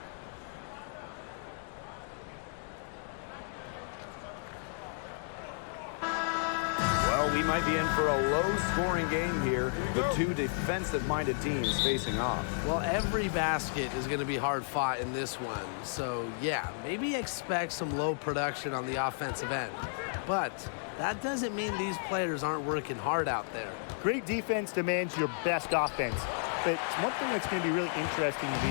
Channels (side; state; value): right; silent; digital silence